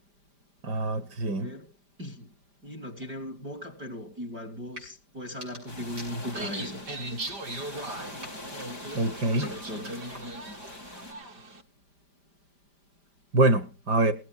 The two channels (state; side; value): late; left; 5.0 ms